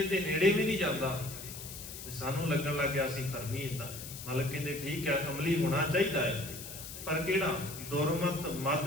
ਤੇ ਨੇੜੇ ਵੀ ਨਹੀਂ ਜਾਂਦਾ। ਸਾਨੂੰ ਲੱਗਣ ਲੱਗ ਗਿਆ ਸੀ ਧਰਮੀ ਇਦਾਂ। ਮਾਲਕ ਕਹਿੰਦੇ ਠੀਕ ਹੈ ਅਮਲੀ ਹੋਣਾ ਚਾਹੀਦਾ ਹੈ, ਪਰ ਕਿਹੜਾ? ਦੁਰਮਤ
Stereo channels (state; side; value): noise; left; hiss, 11 dB below the sound